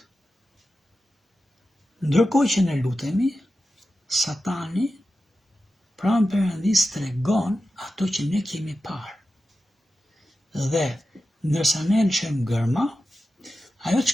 Ndërkohë që ne lutemi, Satani pranë Perëndis tregon ato që ne kemi parë. Dhe ndërsa ne lëshojmë gërma, ajo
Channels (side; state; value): both; normal; correlation 0.92